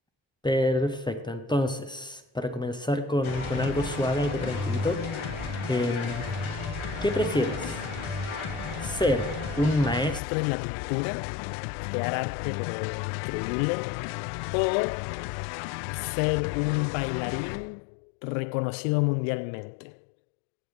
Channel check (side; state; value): right; drops out; at 10.2 s